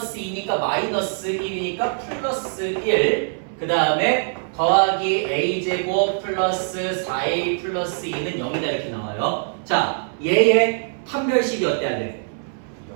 2니까 마이너스 1이니까 플러스 1 그 다음에 더하기 a제곱 플러스 4a 플러스 2는 0이다 이렇게 나와요. 자 얘의 판별식이 어때야 돼?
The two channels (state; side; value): silent; left; 59 dB below the other